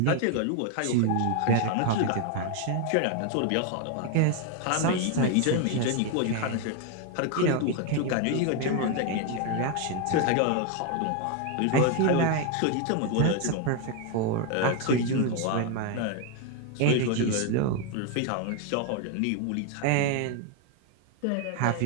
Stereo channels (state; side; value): different; both; correlation 0.01